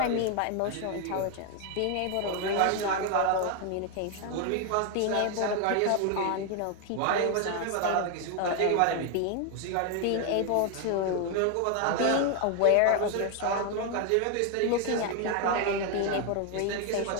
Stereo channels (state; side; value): different; both; correlation 0.01